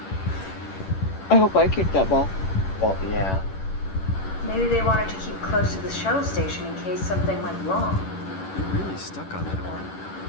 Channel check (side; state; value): right; late; 11 ms